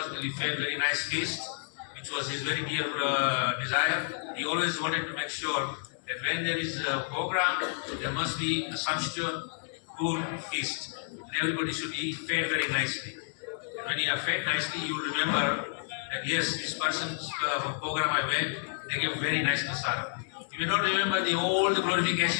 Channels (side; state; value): right; silent; digital silence